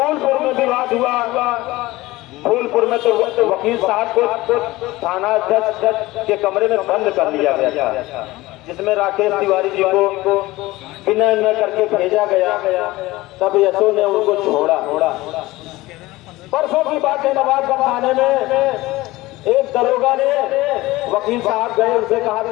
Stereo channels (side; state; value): right; quieter; 19.0 dB